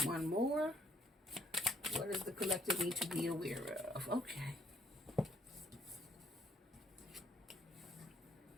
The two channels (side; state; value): both; normal; correlation 0.67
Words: One more. What does the collective need to be aware of? Okay.